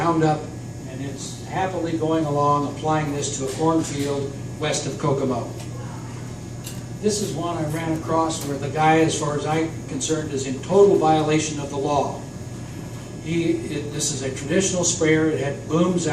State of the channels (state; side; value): identical; both; correlation 1.00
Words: and it's happily going along applying this to a cornfield west of Kokomo. This is one I ran across where the guy, as far as I'm concerned, is in total violation of the law. This is a traditional sprayer. It had booms